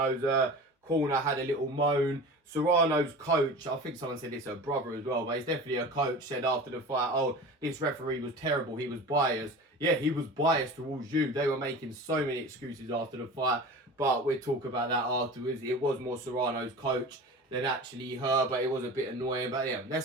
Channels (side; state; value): both; normal; correlation 0.35